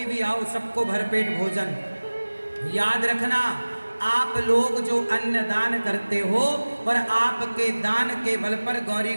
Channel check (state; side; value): inverted; both; correlation -1.00